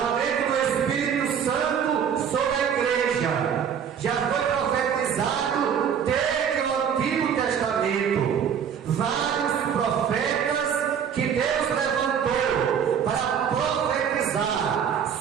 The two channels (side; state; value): left; quieter; 7.9 dB